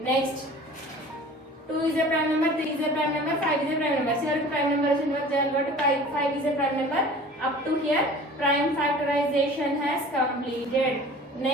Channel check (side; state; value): both; normal; correlation 0.43